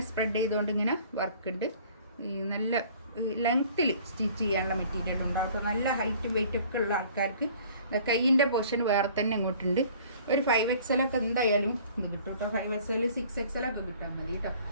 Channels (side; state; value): both; inverted; correlation -0.52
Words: സ്പ്രെഡ് ചെയ്തുകൊണ്ട് ഇങ്ങനെ വർക്ക് ഉണ്ട്. ഈ നല്ല ലെങ്ത്തിൽ സ്റ്റിച്ച് ചെയ്യാനുള്ള മെറ്റീരിയൽ ഉണ്ടാവും. നല്ല ഹൈറ്റും വെയിറ്റൊക്കെ ഉള്ള ആൾക്കാർക്ക് കൈയിൻ്റെ പോർഷൻ വേറെ തന്നെ ഇങ്ങോട്ടുണ്ട്. ഒരു 5XL ഒക്കെ എന്തായാലും ഇത് കിട്ടും കേട്ടോ. 5XL 6XL ഒക്കെ കിട്ടാൻ മതി കേട്ടോ.